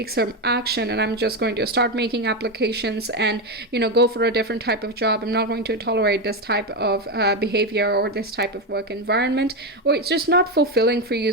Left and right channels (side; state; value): both; normal; correlation 0.11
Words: some action, and I'm just going to start making applications and, you know, go for a different type of job. I'm not going to tolerate this type of behavior or this type of work environment, or it's just not fulfilling for you,